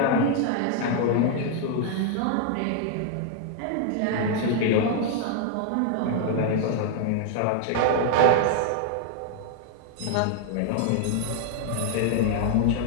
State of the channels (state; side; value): different; both; correlation 0.00